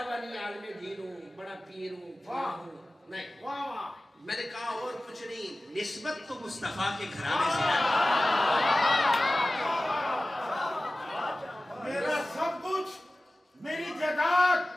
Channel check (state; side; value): normal; both; correlation 0.97